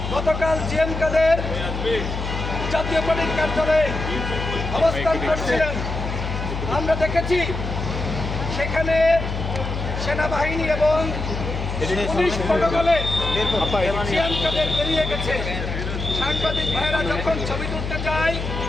গতকাল জিএম কাদের জাতীয় পার্টির কার্যালয়ে অবস্থান করছিলেন, আমরা দেখেছি সেখানে সেনাবাহিনী এবং পুলিশ প্রটোকলে জিএম কাদের বেরিয়ে গেছে। সাংবাদিক ভাইয়েরা যখন ছবি তুলতে যায়,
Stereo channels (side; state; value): left; noise; hum, 4 dB below the sound